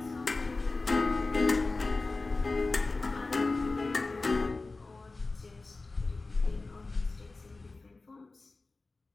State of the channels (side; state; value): right; quieter; 3.5 dB